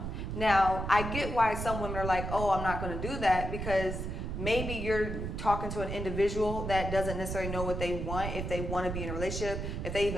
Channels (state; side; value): noise; right; rumble, 4 dB below the sound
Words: Now, I get why some women are like, oh, I'm not going to do that, because maybe you're talking to an individual that doesn't necessarily know what they want, if they want to be in a relationship, if they